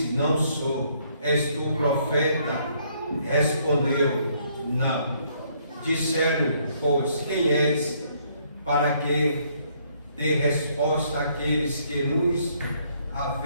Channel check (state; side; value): inverted; both; correlation -0.68